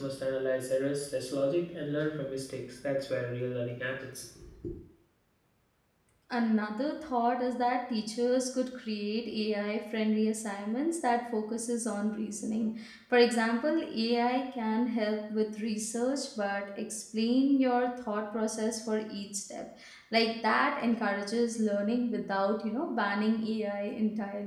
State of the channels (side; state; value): both; identical; correlation 1.00